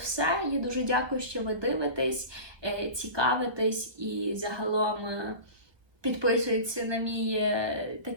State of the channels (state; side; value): late; left; 1.1 ms